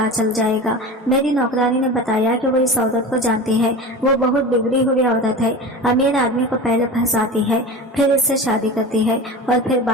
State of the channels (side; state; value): both; normal; correlation 0.31